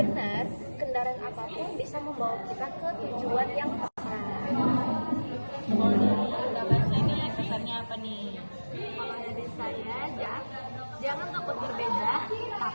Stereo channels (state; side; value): inverted; both; correlation -1.00